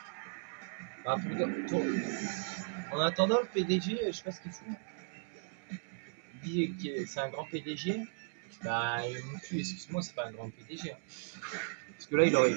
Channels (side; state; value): left; silent; 54 dB below the other